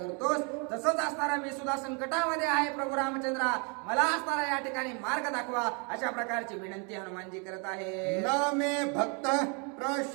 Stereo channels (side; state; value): left; quieter; 35.4 dB